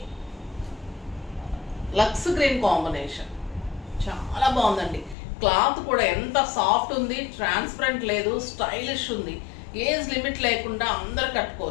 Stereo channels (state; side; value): drops out; right; at 5.2 s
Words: లక్స్ గ్రీన్ కాంబినేషన్, చాలా బాగుందండి. క్లాత్ కూడా ఎంత సాఫ్ట్ ఉంది, ట్రాన్స్పరెంట్ లేదు, స్టైలిష్ ఉంది. ఏజ్ లిమిట్ లేకుండా అందరు